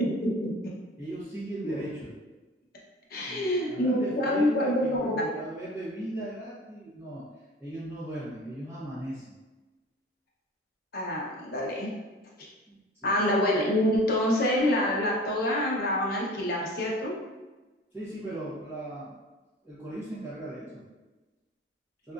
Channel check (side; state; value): both; normal; correlation 0.42